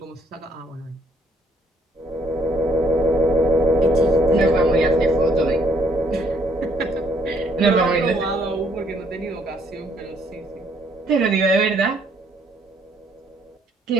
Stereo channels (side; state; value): both; normal; correlation 0.67